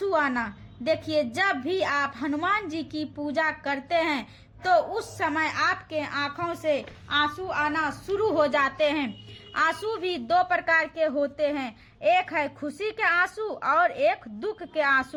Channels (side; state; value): both; identical; correlation 1.00